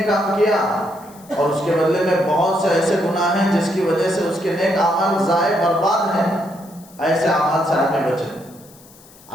کام کیا اور اس کے بدلے میں بہت سے ایسے گناہ ہیں جس کی وجہ سے اس کے نیک اعمال ضائع برباد ہیں، ایسے اعمال سے آدمی بچے.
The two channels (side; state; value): left; noise; hiss, 24 dB below the sound